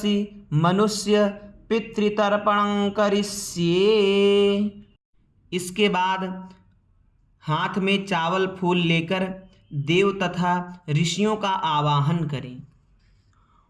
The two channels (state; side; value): identical; both; correlation 1.00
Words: मनुष्य पितृतर्पणं करिष्ये। इसके बाद हाथ में चावल फूल लेकर देव तथा ऋषियों का आवाहन करें।